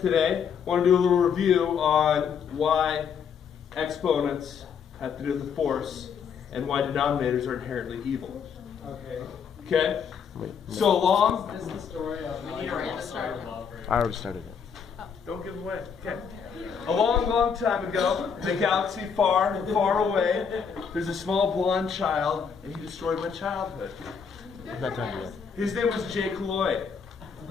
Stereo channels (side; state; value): right; quieter; 6.7 dB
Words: I want to do a little review on why exponents have to do with the force and why denominators are inherently evil. Okay? So long. This is the story of I already started it. Don't give away. Okay. A long, long time ago, in a galaxy far and far away, there's a small blonde child, and he destroyed my childhood. I'm not done yet. His name was Jake Lloyd.